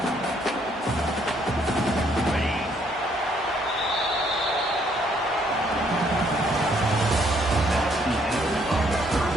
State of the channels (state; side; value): normal; both; correlation 0.68